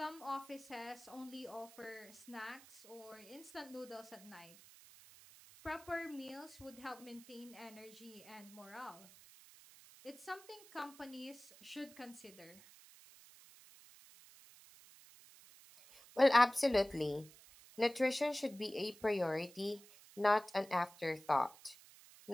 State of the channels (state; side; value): noise; right; hiss, 21 dB below the sound